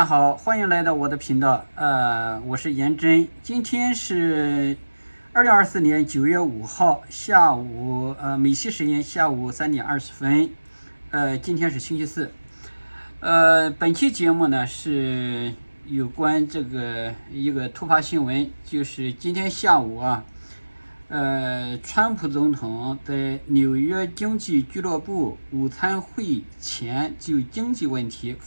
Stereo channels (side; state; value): both; inverted; correlation -1.00